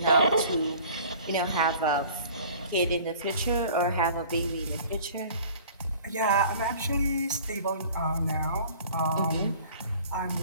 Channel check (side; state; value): both; inverted; correlation -0.47